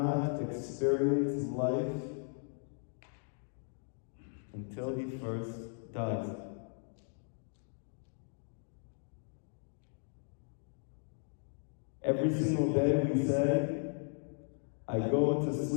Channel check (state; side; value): silent; right; 53 dB below the other